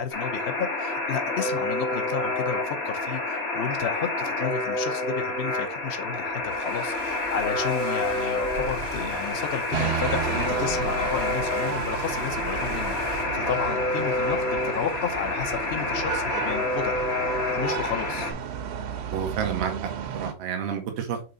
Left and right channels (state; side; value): late; left; 3.1 ms